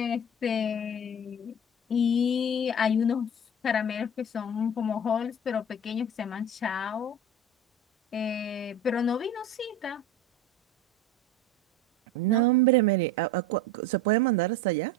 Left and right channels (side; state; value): both; normal; correlation 0.33